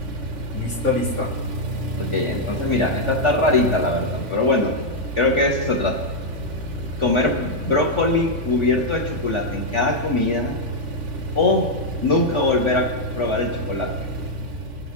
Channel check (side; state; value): left; late; 3.5 ms